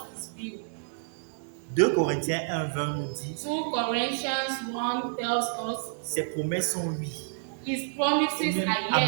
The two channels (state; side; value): silent; left; 58 dB below the other